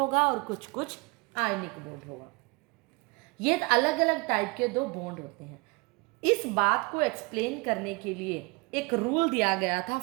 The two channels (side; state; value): left; quieter; 27.0 dB